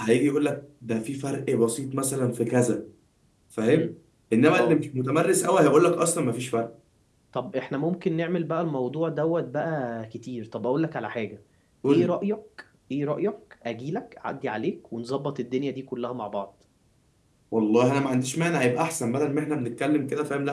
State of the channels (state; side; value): identical; both; correlation 1.00